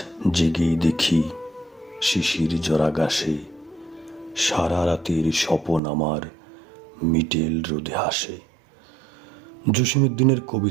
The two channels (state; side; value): drops out; left; at 5.8 s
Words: জেগেই দেখি শিশির জরা গাছে সারা রাতের স্বপন আমার মিটেল রোদে হাসে। জসীমউদ্দিনের